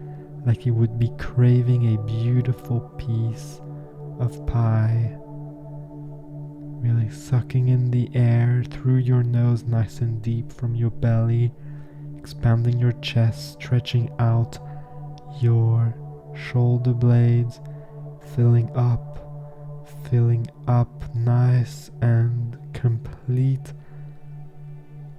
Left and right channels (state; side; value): identical; both; correlation 1.00